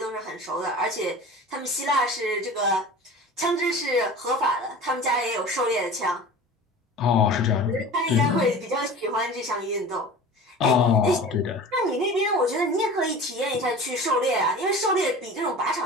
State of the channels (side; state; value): both; normal; correlation 0.37